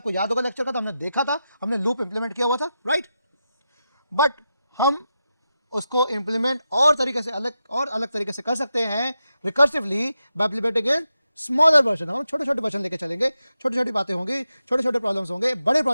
याद होगा लेक्चर का, तो हमने देखा था, हमने लूप इंप्लीमेंट किया हुआ था, राइट। बट हम उसको इंप्लीमेंट और अलग तरीके से कर सकते हैं recursively by implementing in smaller version. हम छोटे छोटे वर्जन लेके चलेंगे, छोटी छोटी बातें होंगी, छोटे छोटे प्रॉब्लम्स होंगे, बड़े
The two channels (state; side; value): inverted; both; correlation -0.88